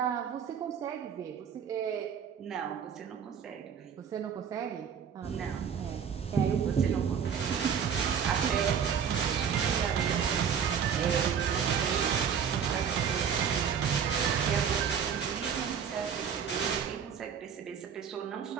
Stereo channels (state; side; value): quieter; left; 7.5 dB